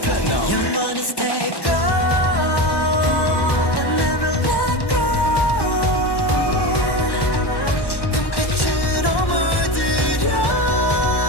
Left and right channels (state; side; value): late; right; 1.1 ms